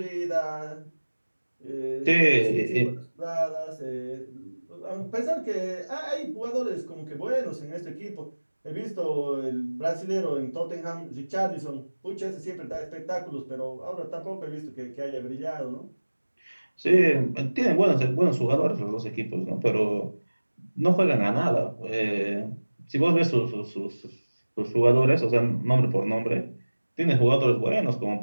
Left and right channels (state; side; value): inverted; both; correlation -1.00